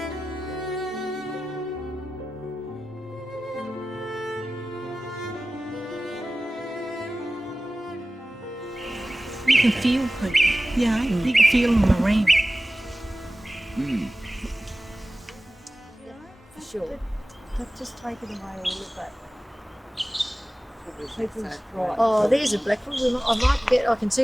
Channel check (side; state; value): both; normal; correlation 0.96